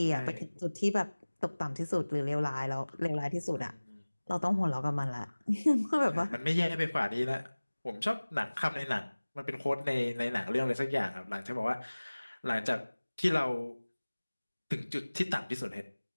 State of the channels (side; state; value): both; inverted; correlation -1.00